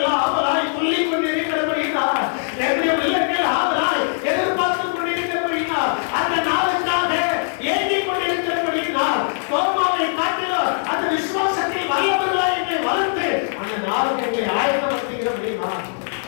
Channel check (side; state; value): right; silent; 60 dB below the other